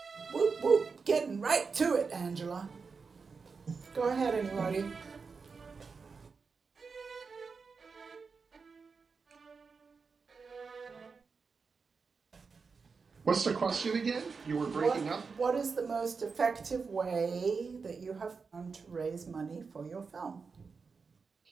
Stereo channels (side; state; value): left; quieter; 5.0 dB